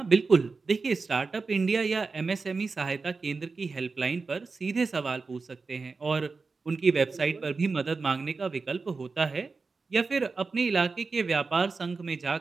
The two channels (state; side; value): quieter; left; 4.3 dB